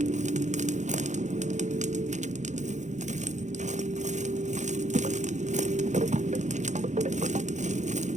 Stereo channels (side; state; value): left; late; 0.35 ms